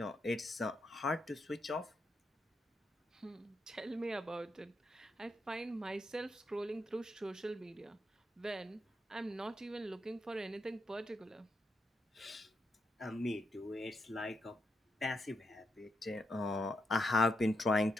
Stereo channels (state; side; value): normal; both; correlation 0.82